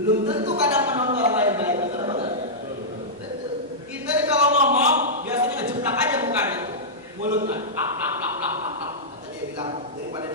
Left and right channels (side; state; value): both; normal; correlation -0.11